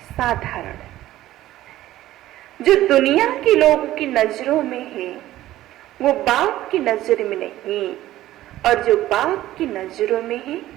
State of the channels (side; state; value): left; quieter; 14.7 dB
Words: साधारण। जो दुनिया के लोगों की नजरों में है वो बाप की नजर में नहीं, और जो बाप की नजरों में है